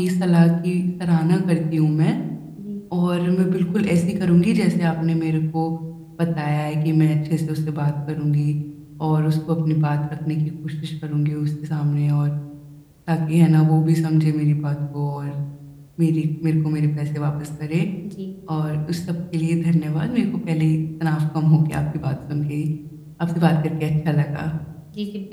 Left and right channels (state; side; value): identical; both; correlation 1.00